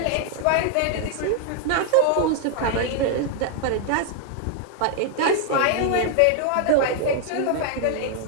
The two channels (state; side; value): different; both; correlation 0.00